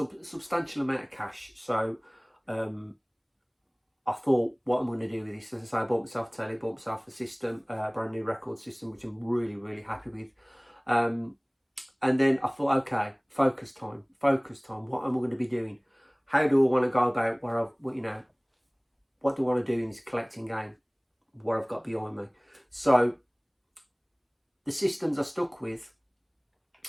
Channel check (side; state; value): both; identical; correlation 1.00